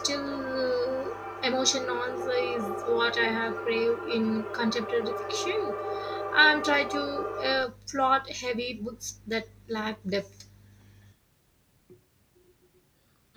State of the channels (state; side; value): identical; both; correlation 1.00